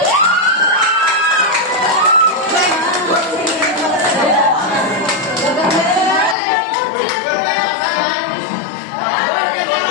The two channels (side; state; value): right; drops out; at 6.4 s